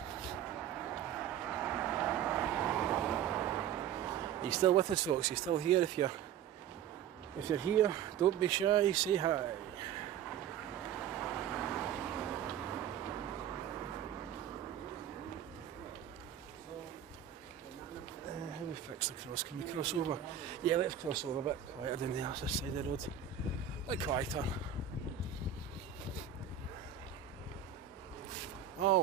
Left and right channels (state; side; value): quieter; left; 9.4 dB